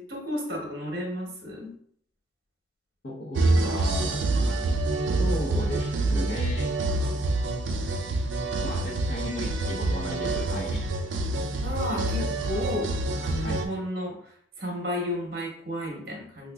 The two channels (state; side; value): normal; both; correlation 0.65